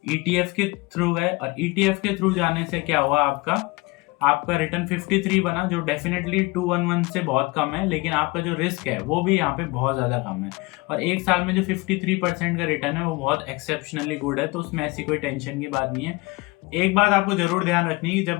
ईटीएफ के थ्रू गए, और ईटीएफ के थ्रू जाने से क्या हुआ, आपका रिटर्न 53 बना, जो डेफिनेटली 211 से बहुत कम है, लेकिन आपका जो रिस्क है वो भी यहाँ पे बहुत ज़्यादा कम है। और 1 साल में जो 53% का रिटर्न है वो बहुत एक्सेप्शनली गुड है, तो उसमें ऐसी कोई टेंशन की बात नहीं है। एक बात आपको जरूर ध्यान रखनी है कि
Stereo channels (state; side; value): quieter; right; 24.0 dB